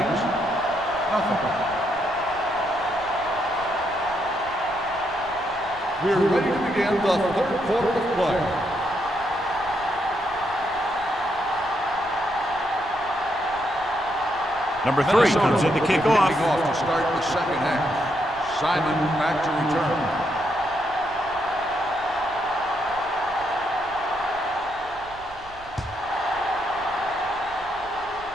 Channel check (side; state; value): right; noise; rumble, 22 dB below the sound